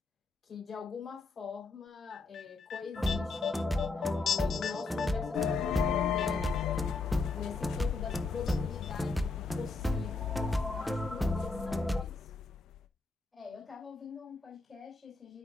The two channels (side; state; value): right; quieter; 3.7 dB